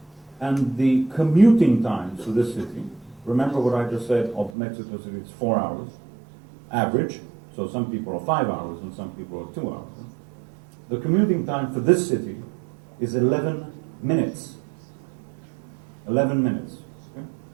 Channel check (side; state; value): left; drops out; at 4.5 s